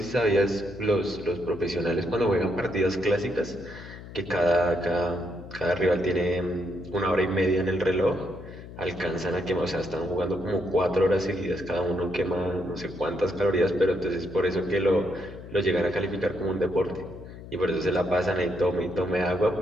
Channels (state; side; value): noise; left; hum, 14 dB below the sound